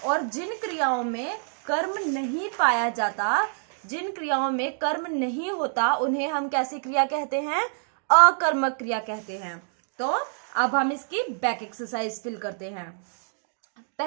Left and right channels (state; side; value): silent; left; digital silence